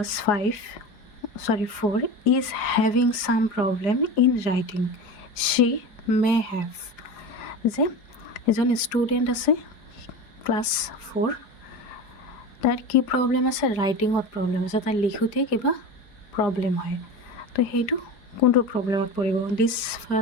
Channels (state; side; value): late; right; 4.9 ms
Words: 4 is having some problem in writing she may have যে এজন ষ্টুডেণ্ট আছে ক্লাছ 4 তার কি প্রবলেম আছে রাইটিংত প্রবলেম আছে তার লিখোতে কিবা প্রবলেম হয় তো সেইটো কোনটো প্রবলেমত পড়িব